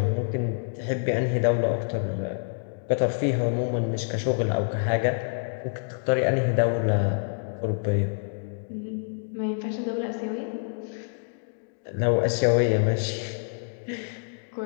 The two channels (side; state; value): right; silent; digital silence